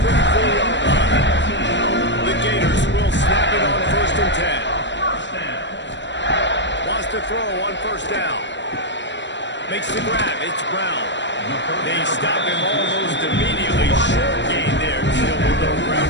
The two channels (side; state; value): right; late; 0.53 ms